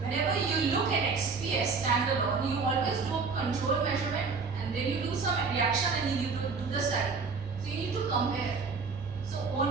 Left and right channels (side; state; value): left; quieter; 4.8 dB